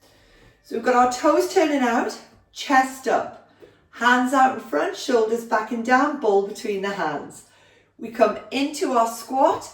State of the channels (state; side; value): identical; both; correlation 1.00